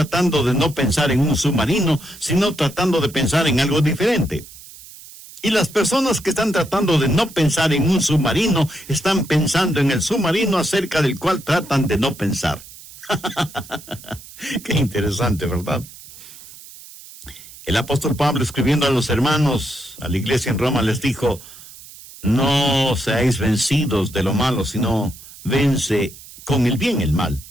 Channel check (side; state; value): right; noise; hiss, 18 dB below the sound